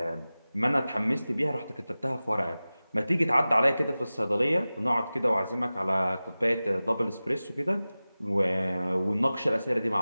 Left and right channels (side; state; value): both; inverted; correlation -0.97